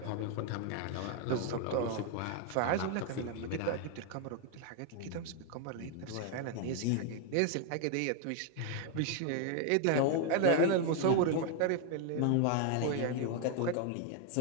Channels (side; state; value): both; different; correlation 0.00